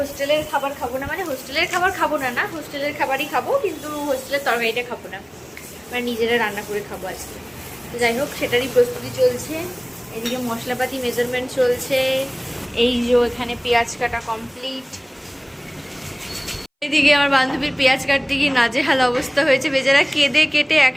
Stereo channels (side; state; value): both; identical; correlation 1.00